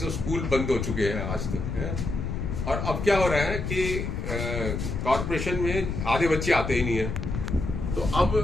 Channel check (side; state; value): left; noise; rumble, 3 dB below the sound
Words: स्कूल बंद हो चुके हैं आज तक है। और अब क्या हो रहा है कि कॉर्पोरेशन में आधे बच्चे आते ही नहीं है। तो अब